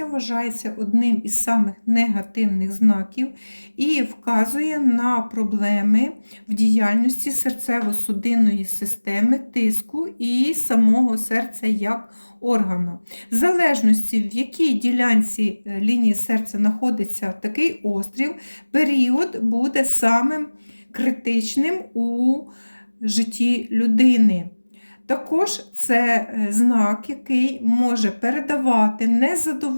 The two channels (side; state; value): both; inverted; correlation -1.00